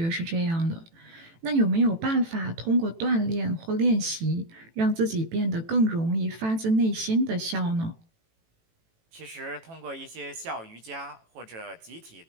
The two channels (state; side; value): late; left; 18 ms